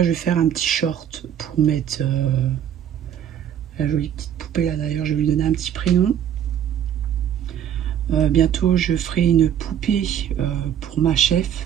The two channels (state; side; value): quieter; left; 9.8 dB